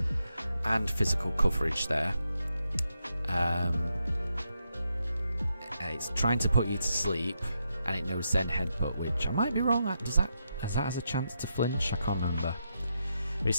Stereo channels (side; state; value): both; inverted; correlation -0.82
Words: and physical coverage there. It's trying to put you to sleep, and it knows Zen Headbutt, which I might be wrong. Has that has a chance to flinch? I can't remember. But it